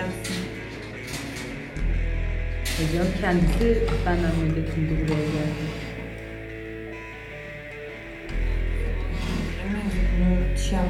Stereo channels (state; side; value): identical; both; correlation 1.00